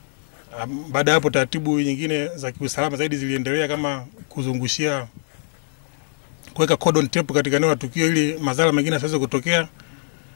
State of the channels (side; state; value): right; silent; 60 dB below the other